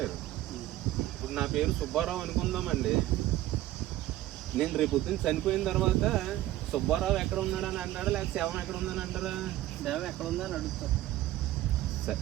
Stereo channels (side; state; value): left; quieter; 14.9 dB